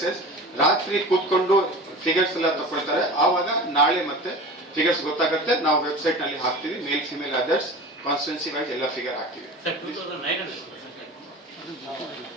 ರಾತ್ರಿ ಕೂತ್ಕೊಂಡು ಫಿಗರ್ಸ್ ಎಲ್ಲ ತಗೊಳ್ತಾರೆ ಆವಾಗ ನಾಳೆ ಮತ್ತೆ ಫಿಗರ್ಸ್ ಗೊತ್ತಾಗುತ್ತೆ ನಾವು ವೆಬ್ಸೈಟ್ ನಲ್ಲಿ ಹಾಕ್ತೀವಿ male female others constituency wise ಎಲ್ಲ ಫಿಗರ್ ಹಾಕ್ತೀವಿ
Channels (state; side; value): normal; both; correlation 0.35